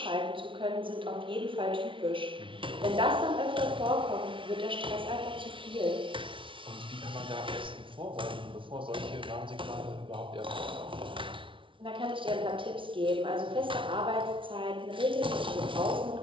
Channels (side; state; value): left; late; 0.25 ms